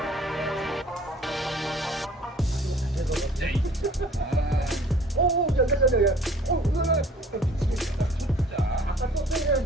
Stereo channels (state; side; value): normal; both; correlation 0.51